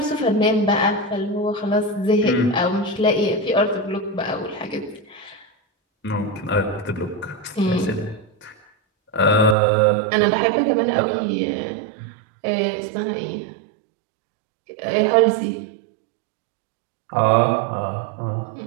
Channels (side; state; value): left; drops out; at 9.6 s